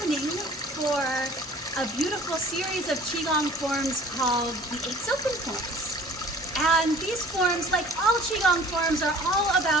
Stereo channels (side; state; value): both; normal; correlation 0.48